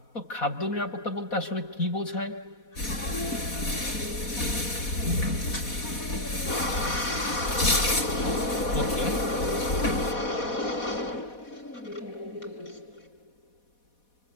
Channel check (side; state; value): right; late; 4.1 ms